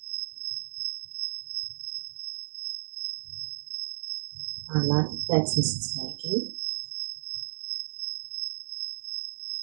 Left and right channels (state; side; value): silent; left; digital silence